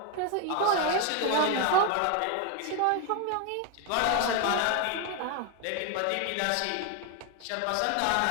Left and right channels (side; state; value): both; different; correlation 0.01